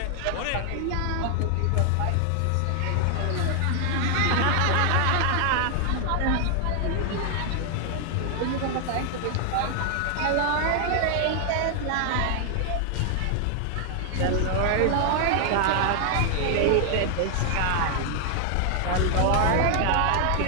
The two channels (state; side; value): different; both; correlation 0.00